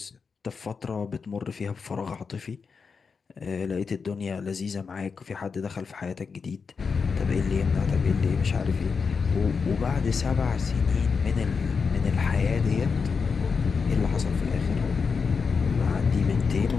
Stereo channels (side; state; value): right; quieter; 5.4 dB